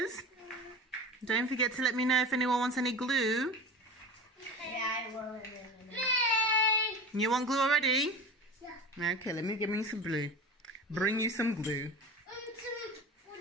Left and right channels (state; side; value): normal; both; correlation 0.32